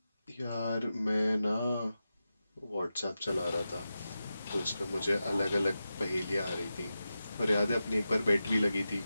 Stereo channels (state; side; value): inverted; both; correlation -0.92